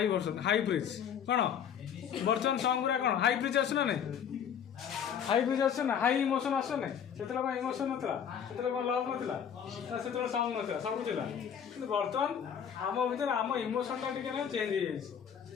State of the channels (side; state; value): right; quieter; 8.2 dB